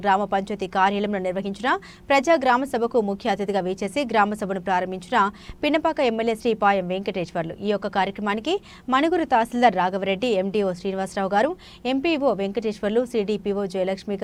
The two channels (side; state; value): both; identical; correlation 1.00